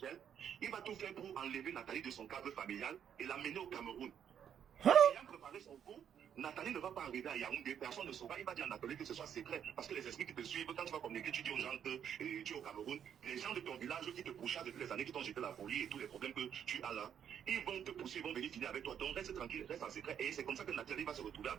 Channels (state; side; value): quieter; left; 8.8 dB